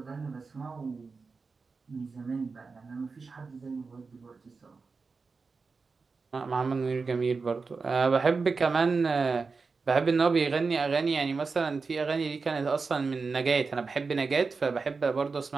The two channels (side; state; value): left; quieter; 4.5 dB